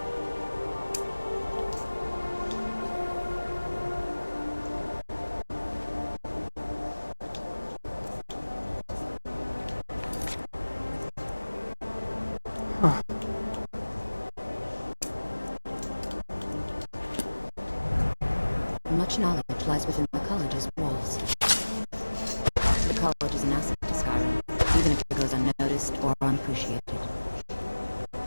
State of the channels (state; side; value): inverted; both; correlation -1.00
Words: Much knowledge lies within the college's walls. The college is an asset to Skyrim, even if it goes unnoticed or unappreciated.